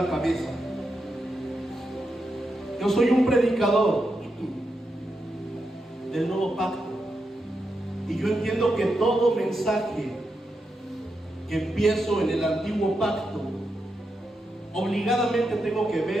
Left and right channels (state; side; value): normal; both; correlation 0.85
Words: cabeza. Yo soy un predicador del nuevo pacto y yo entiendo que todo mensaje que empiezo en el antiguo pacto obligadamente tengo que